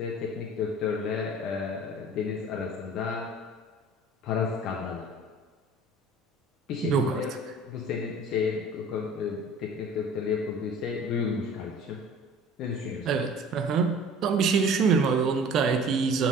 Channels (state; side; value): normal; both; correlation 0.45